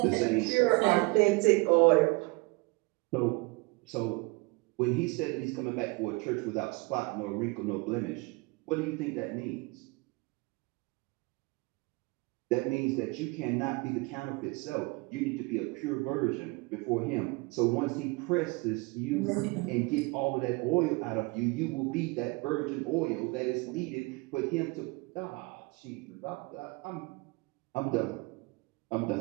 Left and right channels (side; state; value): left; quieter; 26.4 dB